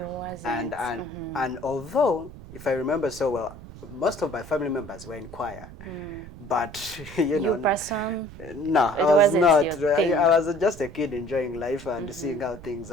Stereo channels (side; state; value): right; noise; rumble, 15 dB below the sound